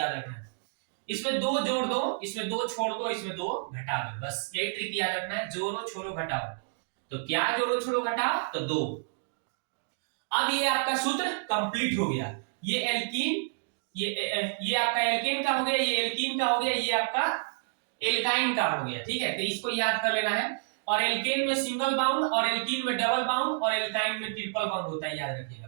रखना है। इसमें दो जोड़ दो, इसमें दो छोड़ दो, इसमें दो घटा दो, बस यही ट्रिक याद रखना है, जोड़ो छोड़ो घटाओ। तो क्या जोड़ो छोड़ो घटाओ, तो दो। अब ये आपका सूत्र कंप्लीट हो गया। ये एल्कीन, ये आपका एल्केन का हो गया, ये एल्कीन का हो गया, ये आपका एल्काइन का हो गया। ठीक है, तो इसको याद कर लेना है। और एल्केन में सिंगल बाउंड और एल्कीन में डबल बाउंड और एल्काइन में ट्रिपल बाउंड होता है, याद रखिएगा।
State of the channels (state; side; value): silent; left; digital silence